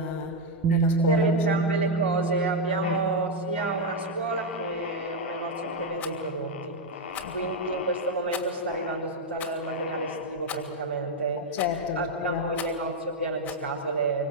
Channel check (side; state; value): both; normal; correlation 0.03